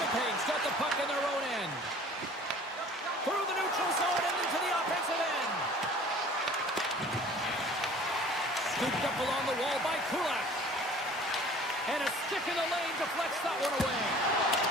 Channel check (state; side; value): normal; both; correlation 0.48